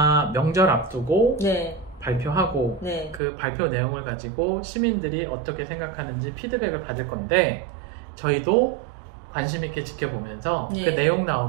명절 앞두고 네. 발표하고 네. 그 발표 내용을 가지고 시민들이 어떻게 생각하는지 피드백을 받을 건데 저희도 관심 있게 지켜보면서 네. 그 내용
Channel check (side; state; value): left; drops out; at 3.2 s